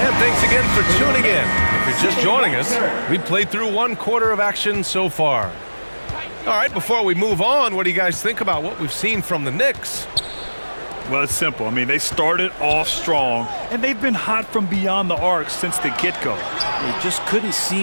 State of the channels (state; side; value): inverted; both; correlation -1.00